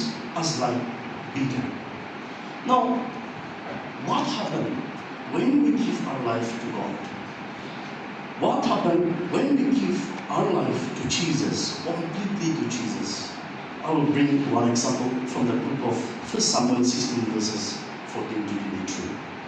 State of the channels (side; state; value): both; identical; correlation 1.00